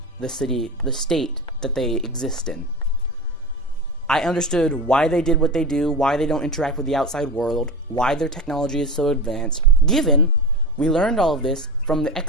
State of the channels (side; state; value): both; normal; correlation 0.25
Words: the city, the state that they exist in. I understood why they did what they do, why they don't interact with the outside world, why their technology is so advanced. Given, we learned all of this from the